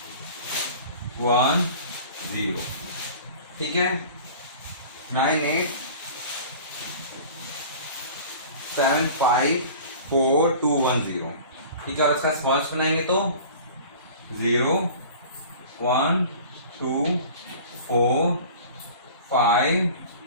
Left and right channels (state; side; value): inverted; both; correlation -0.42